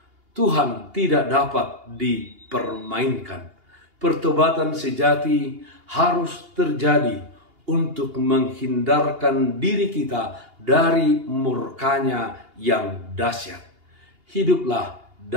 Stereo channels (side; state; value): left; late; 2.8 ms